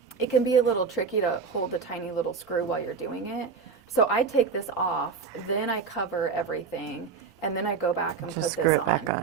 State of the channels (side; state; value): left; quieter; 5.5 dB